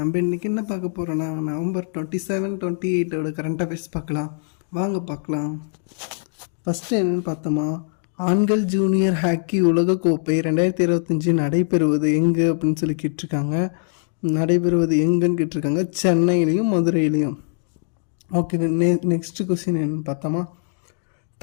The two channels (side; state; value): right; silent; digital silence